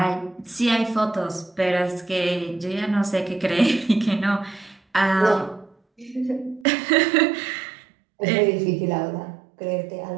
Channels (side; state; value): left; drops out; at 6.7 s